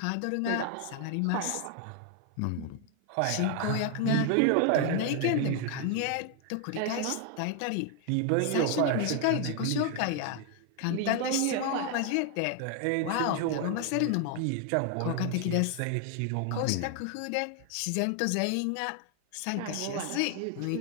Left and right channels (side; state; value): both; different; correlation 0.00